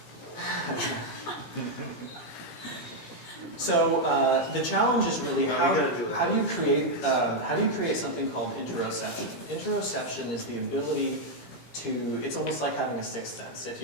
So the challenge is really how do you create something called interoception? Interoception is the ability to, it's almost like having a sixth sense. If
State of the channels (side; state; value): right; late; 17 ms